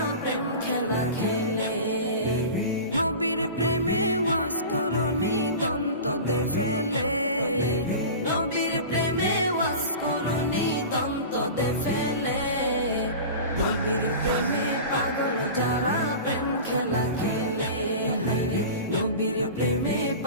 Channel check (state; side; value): inverted; both; correlation -0.33